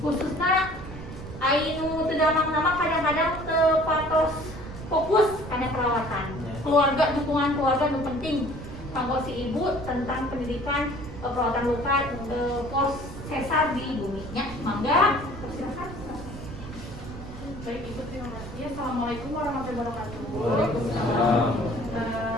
khususnya anu teu damang-damang kadang-kadang teu patos fokus kana perawatan. Keluarga, dukungan keluarga nu penting kanggo si ibu tentang pendidikan perawatan luka pos sesar di bumi nya. Mangga silakan. Baik Ibu, terima kasih. Assalamualaikum warahmatullahi wabarakatuh. Waalaikumsalam.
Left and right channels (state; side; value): noise; right; rumble, 12 dB below the sound